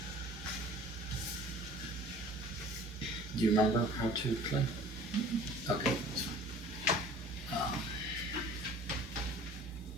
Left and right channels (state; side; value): noise; left; hum, 22 dB below the sound